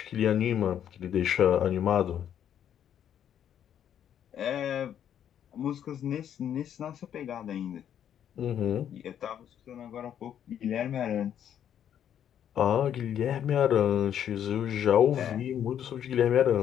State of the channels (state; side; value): quieter; right; 9.7 dB